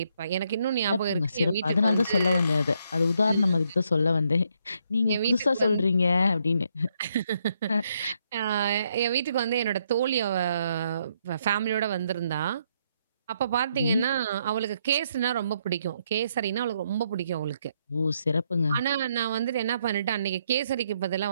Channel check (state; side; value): inverted; both; correlation -0.74